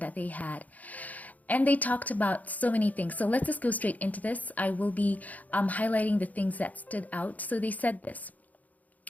they had. And they talked about so many things. So let's just go straight into this. I will be highlighting the things that stood out. So they said this.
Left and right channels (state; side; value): late; right; 0.077 ms